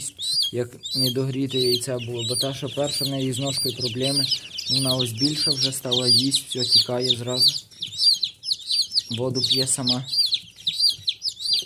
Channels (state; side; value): identical; both; correlation 1.00